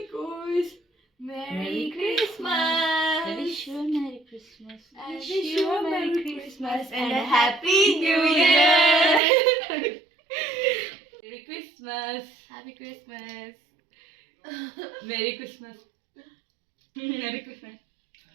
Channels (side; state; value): left; drops out; at 9.2 s